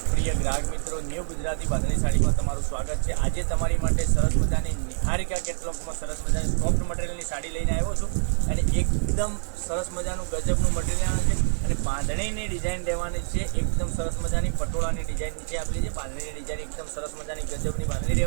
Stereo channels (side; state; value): left; silent; 56 dB below the other